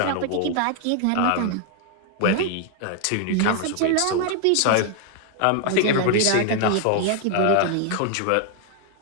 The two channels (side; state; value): both; different; correlation 0.00